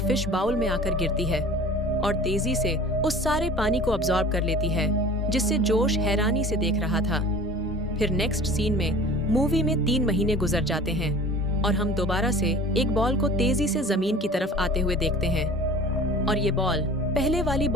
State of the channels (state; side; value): normal; both; correlation 0.42